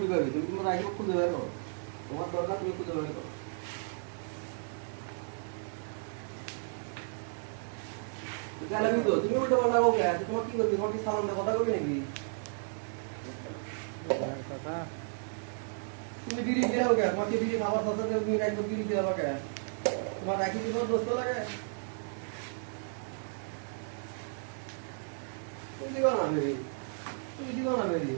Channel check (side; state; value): left; silent; digital silence